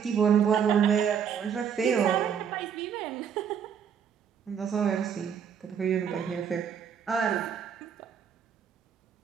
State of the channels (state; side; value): quieter; left; 7.7 dB